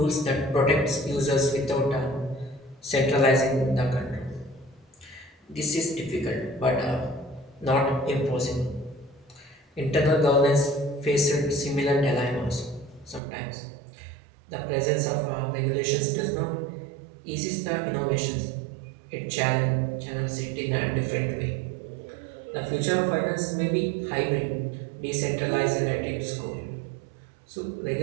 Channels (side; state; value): left; drops out; at 13.2 s